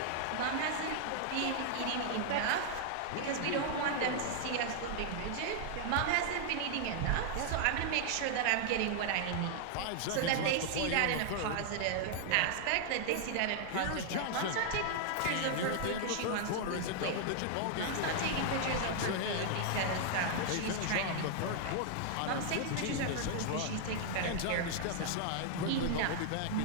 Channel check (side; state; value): both; different; correlation -0.01